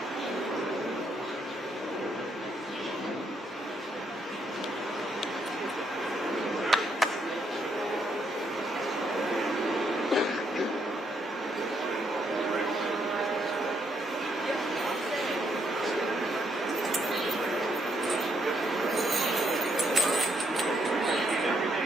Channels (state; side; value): normal; both; correlation 0.74